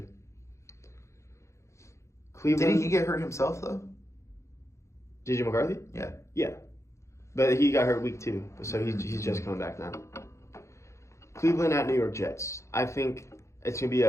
Cleveland. Didn't he get hurt himself though? JJ McCarthy? Yeah. Yeah. But he got hurt week 2, so he's just coming back now. Cleveland at New York Jets. I think it's gonna be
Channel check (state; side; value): late; right; 0.14 ms